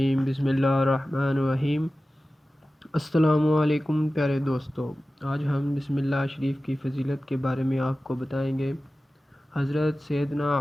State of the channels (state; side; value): normal; both; correlation 0.95